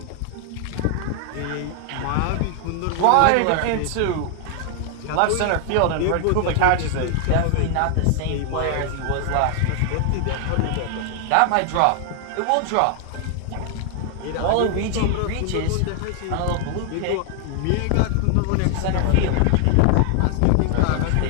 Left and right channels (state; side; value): different; both; correlation 0.00